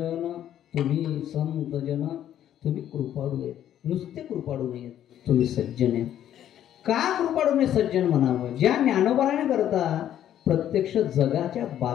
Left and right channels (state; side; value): quieter; right; 11.0 dB